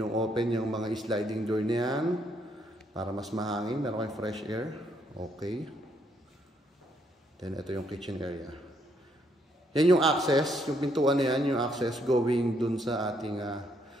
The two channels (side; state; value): both; normal; correlation 0.72